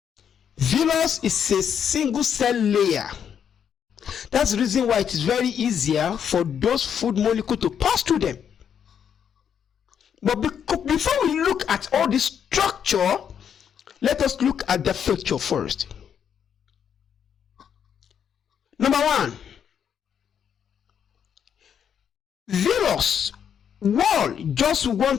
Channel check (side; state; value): right; quieter; 8.2 dB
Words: Villus is a single cell layer. That's the reason why it is very easier for those food molecules to pass through them. But before we look at all this structure, let us look at the feature first. Number one, villus wall, just one